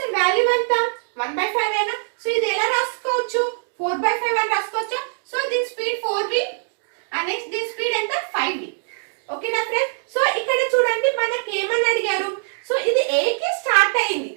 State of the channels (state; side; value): silent; left; digital silence